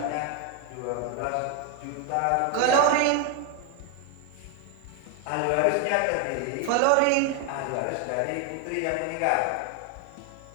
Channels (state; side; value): different; both; correlation 0.01